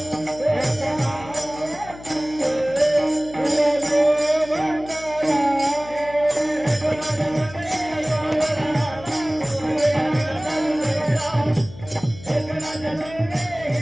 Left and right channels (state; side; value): noise; left; hum, 17 dB below the sound